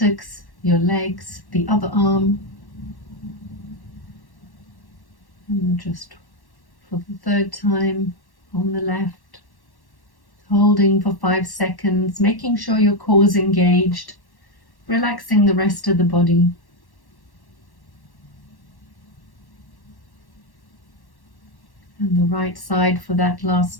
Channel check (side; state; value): right; late; 1.1 ms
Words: your legs, the other arm. And just for the 3rd time on the left, holding for 5 seconds, making sure your core is engaged, relaxing the rest of the body. And the right side for that